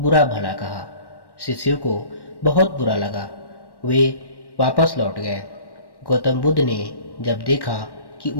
भला कहा। शिष्यों को बहुत बुरा लगा। वे वापस लौट गए। गौतम बुद्ध ने जब देखा कि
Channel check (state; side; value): late; right; 1.1 ms